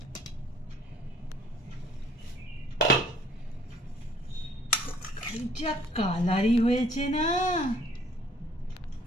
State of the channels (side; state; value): both; normal; correlation 0.59